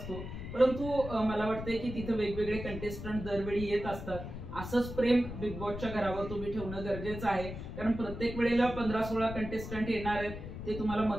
परंतु मला वाटतंय की तिथे वेगवेगळे कंटेस्टंट दरवेळी येत असतात. असंच प्रेम बिग बॉसच्या घरावर तुम्ही ठेवणं गरजेचं आहे, कारण प्रत्येक वेळेला 15-16 कंटेस्टंट येणार आहेत. ते तुम्हाला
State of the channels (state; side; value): noise; left; rumble, 8 dB below the sound